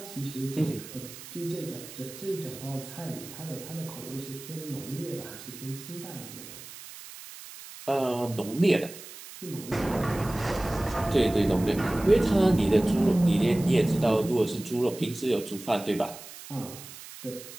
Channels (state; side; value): noise; right; hiss, 15 dB below the sound